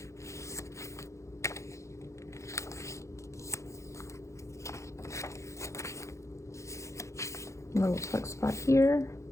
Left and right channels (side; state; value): right; late; 0.14 ms